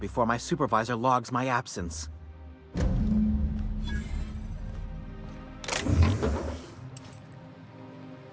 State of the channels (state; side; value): identical; both; correlation 1.00